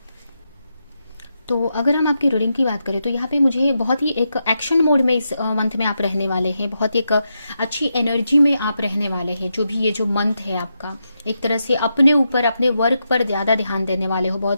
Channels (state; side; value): inverted; both; correlation -0.86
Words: तो अगर हम आपकी रीडिंग की बात करें तो यहाँ पे मुझे बहुत ही एक एक्शन मोड में इस मंथ में आप रहने वाले हैं। बहुत ही एक अच्छी एनर्जी में आप रहने वाले हैं। जो भी ये जो मंथ है आपका, एक तरह से अपने ऊपर, अपने वर्क पर ज़्यादा ध्यान देने वाले हो।